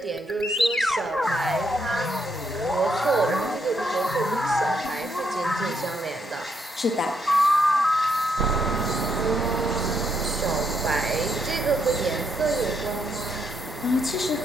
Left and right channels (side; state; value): both; normal; correlation 0.77